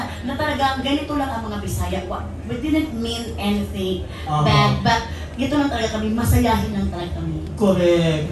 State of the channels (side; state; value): both; identical; correlation 1.00